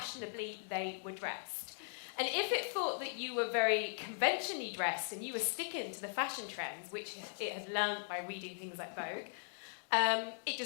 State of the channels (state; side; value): silent; right; digital silence